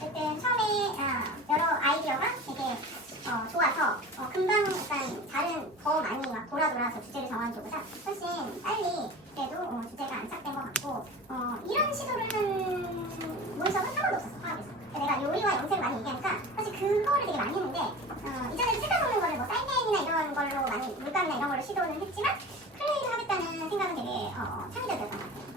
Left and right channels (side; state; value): both; normal; correlation 0.35